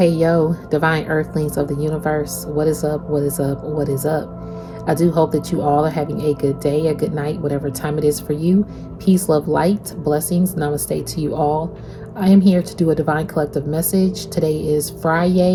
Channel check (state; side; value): identical; both; correlation 1.00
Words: divine earthlings of the universe. What is up? What is up? What is up? I do hope that you all are having a good day, a good night, whatever time it is for you. Peace, love, light, blessings, namaste to you all. I am here to do a divine collective message. Today is